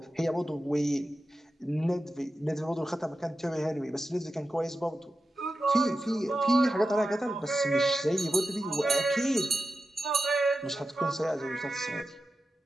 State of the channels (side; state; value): both; normal; correlation 0.91